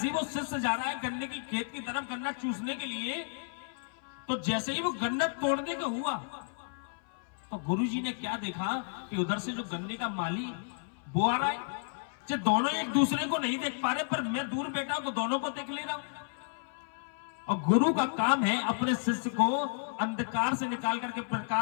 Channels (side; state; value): right; silent; 56 dB below the other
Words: ही वो शिष्य जा रहा है गन्ने की खेत की तरफ गन्ना चूसने के लिए, तो जैसे ही वो गन्ना तोड़ने का हुआ, तो गुरुजी ने क्या देखा कि उधर से जो गन्ने का माली वो आ रहा है। जो दोनों एक दूसरे को नहीं देख पा रहे, पर मैं दूर बैठा हूं तो दोनों को देख ले रहा हूं। और गुरु का काम है अपने शिष्य को अंधकार से निकाल करके